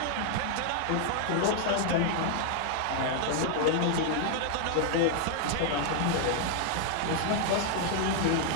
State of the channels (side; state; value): both; different; correlation 0.00